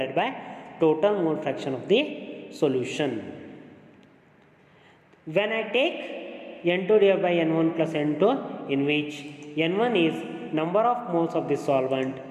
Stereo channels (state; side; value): identical; both; correlation 1.00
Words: by total mole fraction of the solution. When I take N2 divided by N1 plus N2, in which N1 is number of moles of the solvent,